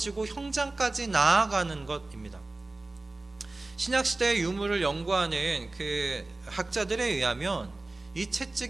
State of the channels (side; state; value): left; quieter; 3.0 dB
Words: 형장까지 나아가는 것입니다. 신약시대의 유물을 연구하는 그 학자들에 의하면 이